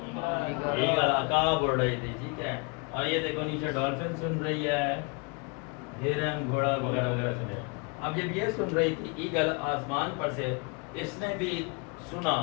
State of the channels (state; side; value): quieter; right; 32.1 dB